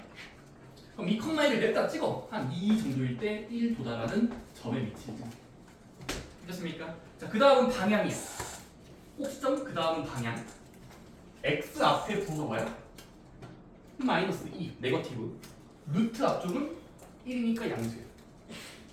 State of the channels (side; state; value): both; identical; correlation 1.00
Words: 그럼 2,1을 냈다 찍어. 한 2 정도일 때 1 도달하는 점의 위치이죠. 됐습니까? 자, 그 다음은 방향이야. 꼭지점 그 다음은 방향. x 앞에 부호가 뭐야? 마이너스 2, 네거티브. 루트 앞쪽은 1이니까 양수예요.